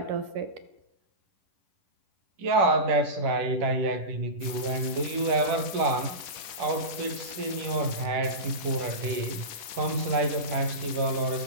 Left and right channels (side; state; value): left; late; 10 ms